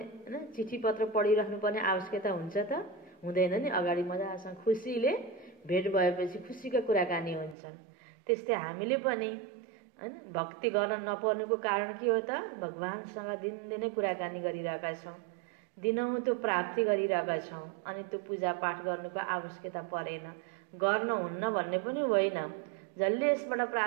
चिठी पत्र पढिराख्नुपर्ने आवश्यकता हुन्छ त? हुँदैन नि। अगाडि मजासँग खुसीले भेट भएपछि खुसीका कुराकानी हुन्छन्। त्यस्तै हामीले पनि हैन भक्ति गर्न नपर्नुको कारण के हो त? भगवानसँग दिनदिनै कुराकानी गरिरहेका छौं। दिनहुँ त्यो प्राप्ति गरिरहेका छौँ अनि त्यो पूजापाठ गर्नुको आवश्यकता परेन, गर्न हुन्न भन्ने पनि होइन। जसले यसबाट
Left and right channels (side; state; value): left; drops out; at 7.6 s